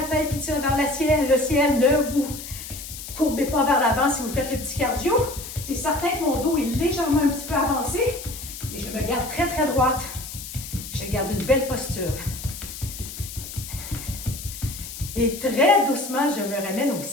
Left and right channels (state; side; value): noise; left; hiss, 11 dB below the sound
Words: tête qui tire vers le ciel. Le ciel, ne vous courbez pas vers l'avant si vous faites le petit cardio. C'est certain que mon dos est légèrement un petit peu avancé, mais je me garde très droite. Je garde une belle posture. Et très doucement, je me ramène au